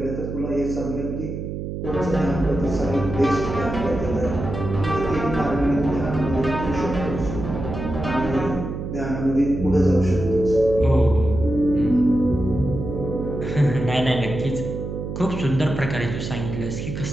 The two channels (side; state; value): right; noise; hum, 6 dB below the sound